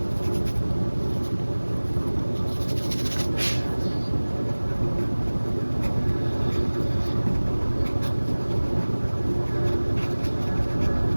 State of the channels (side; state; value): both; inverted; correlation -1.00